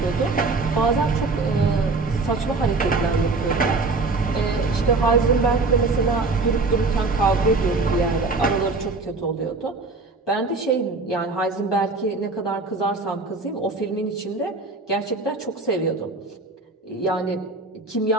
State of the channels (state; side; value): quieter; left; 3.6 dB